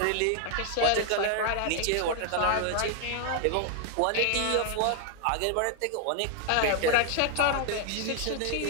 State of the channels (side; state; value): both; different; correlation 0.00